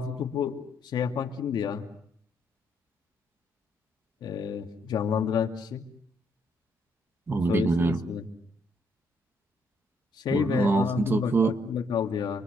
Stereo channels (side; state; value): both; normal; correlation 0.72